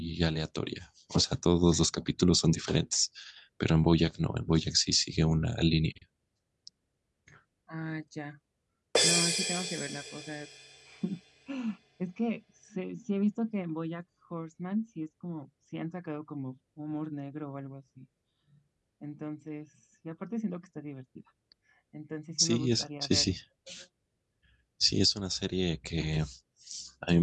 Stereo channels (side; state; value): both; identical; correlation 1.00